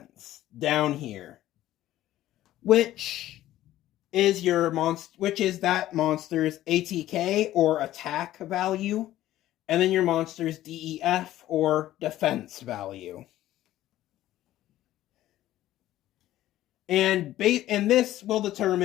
down here, which is that monster's ATK or attack value, and then your monster's DEF or defense value. And this will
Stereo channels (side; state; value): right; quieter; 14.1 dB